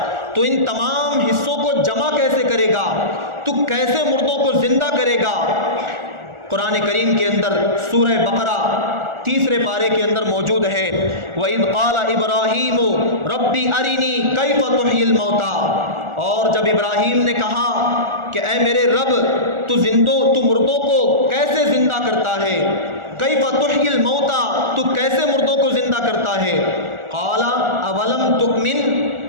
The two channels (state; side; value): late; left; 1.4 ms